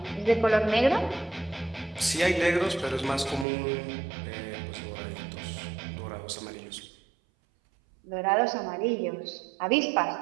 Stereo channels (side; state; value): left; drops out; at 3.5 s